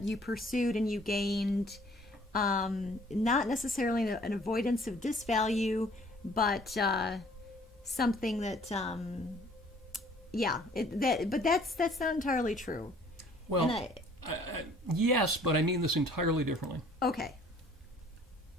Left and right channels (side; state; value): both; normal; correlation 0.56